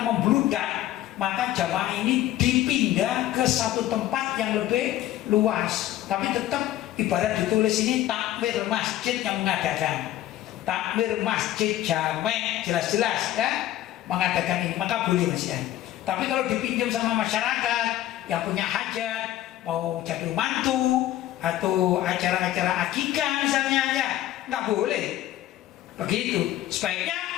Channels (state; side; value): quieter; right; 13.7 dB